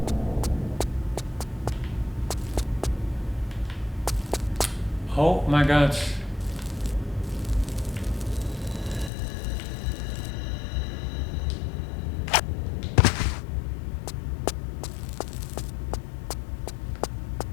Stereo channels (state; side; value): drops out; right; at 9.1 s